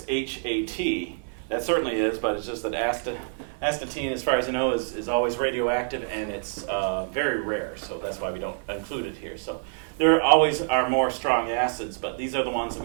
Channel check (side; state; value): left; silent; 61 dB below the other